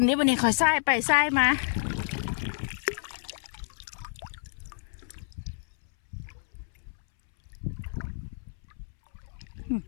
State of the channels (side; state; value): right; silent; 58 dB below the other